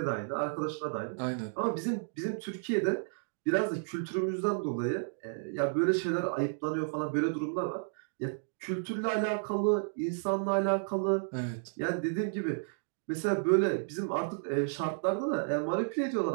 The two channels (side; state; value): left; silent; digital silence